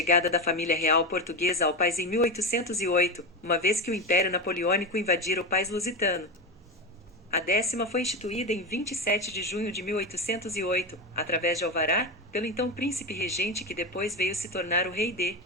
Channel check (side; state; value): both; normal; correlation 0.18